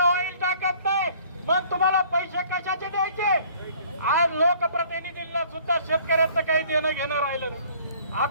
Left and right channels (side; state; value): both; inverted; correlation -0.55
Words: टाकत नाही, मग तुम्हाला पैसे कशाचे द्यायचे? आज लोकप्रतिनिधींना सुद्धा शेतकऱ्यांचं काही देणं घेणं राहिलं नाही.